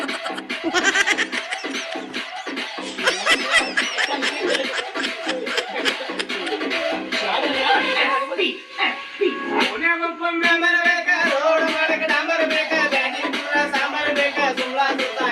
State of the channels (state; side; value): identical; both; correlation 1.00